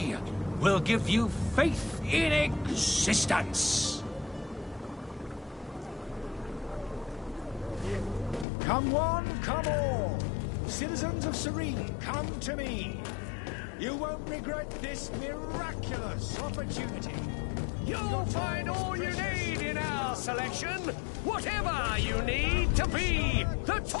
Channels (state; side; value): drops out; right; at 8.5 s